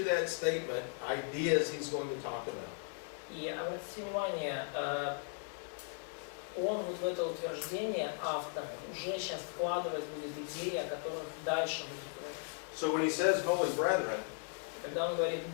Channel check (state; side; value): silent; right; 53 dB below the other